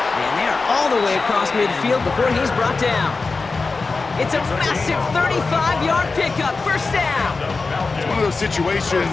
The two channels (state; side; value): quieter; right; 4.0 dB